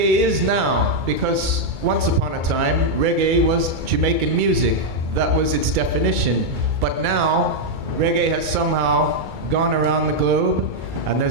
is now, because once upon a time, reggae was Jamaican music. That was its definition. But now, reggae has somehow gone around the globe, and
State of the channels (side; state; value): left; late; 2.3 ms